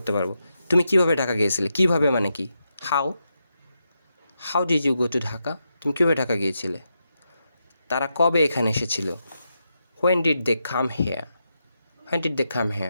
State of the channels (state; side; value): inverted; both; correlation -0.85